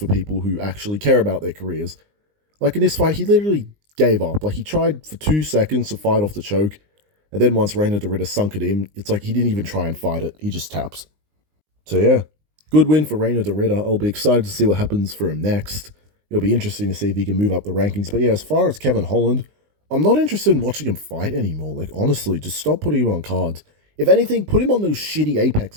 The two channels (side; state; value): left; late; 19 ms